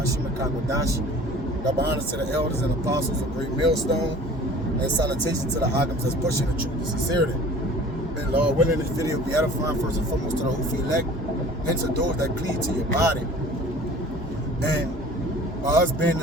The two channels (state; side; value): normal; both; correlation 0.45